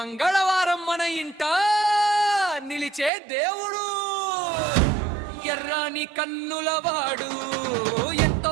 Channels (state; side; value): drops out; left; at 3.1 s